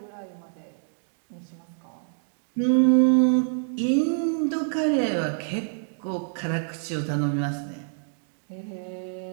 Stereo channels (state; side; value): silent; left; digital silence